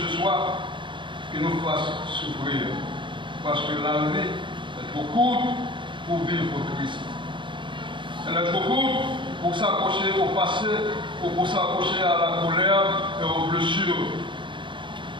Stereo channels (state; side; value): late; left; 0.23 ms